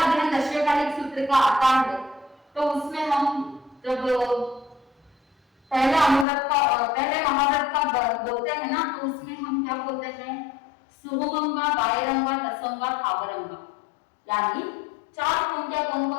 अध्ययन दशकालिक सूत्र का आता है तो उसमें हम जब पहले महाव्रत का बोलते हैं ना, तो उसमें हम क्या बोलते हैं? सुहुमंगा, बायरंगा, दसंगा, थावरंगा। यानी 4 खूंटियां कौन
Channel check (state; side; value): drops out; right; at 6.2 s